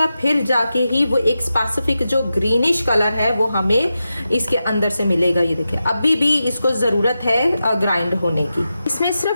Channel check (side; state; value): both; inverted; correlation -0.90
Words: फिर जाके ही वो एक स्पेसिफिक जो ग्रीनिश कलर है वो हमें इसके अंदर से मिलेगा। ये देखिए, अभी भी इसको ज़रूरत है ग्राइंड होने की। इसमें